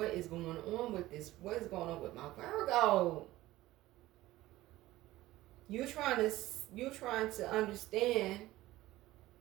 is going on with this? What is going on with my Virgo? You're trying to understand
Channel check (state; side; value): quieter; left; 16.8 dB